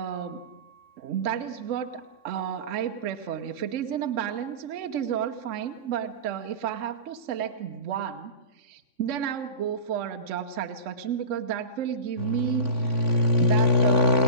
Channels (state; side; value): late; left; 3.7 ms